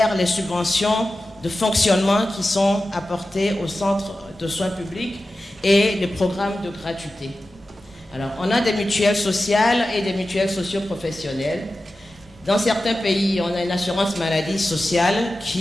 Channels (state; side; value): normal; both; correlation 0.94